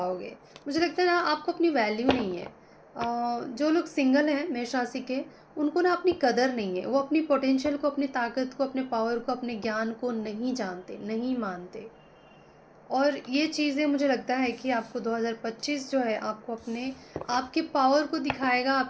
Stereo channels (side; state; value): both; identical; correlation 1.00